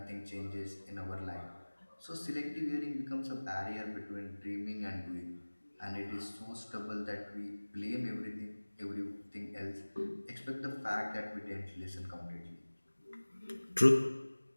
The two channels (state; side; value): inverted; both; correlation -1.00